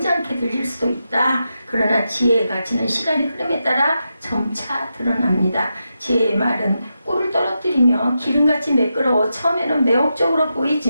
들릴 수도 있다. 그러나 지혜의 가치는 시간의 흐름에 따라 점차 드러납니다. 지혜의 말은 꿀을 떨어뜨리며 기름같이 매끄러워 처음에는 매혹적으로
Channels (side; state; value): both; inverted; correlation -0.88